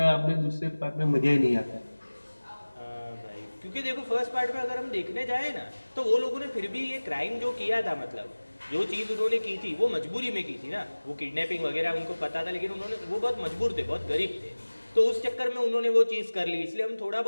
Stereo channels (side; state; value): both; inverted; correlation -1.00